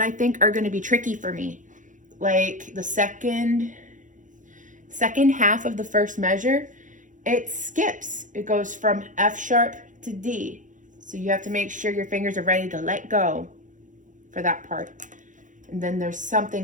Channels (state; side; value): late; left; 0.37 ms